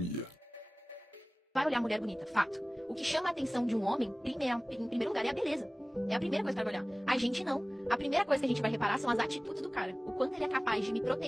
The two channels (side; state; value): both; normal; correlation 0.98